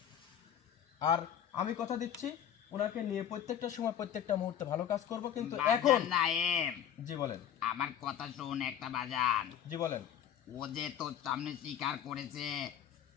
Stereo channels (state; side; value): quieter; right; 9.7 dB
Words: আর আমি কথা দিচ্ছি ওনাকে নিয়ে প্রত্যেকটা সময় প্রত্যেকটা মুহূর্তে ভালো কাজ করব, কিন্তু এখন বাজান নাইম, জি বলেন। আমার কথা শোন একটা বাজান। জি বলেন। ও যে তোর সামনে স্বীকার করেছে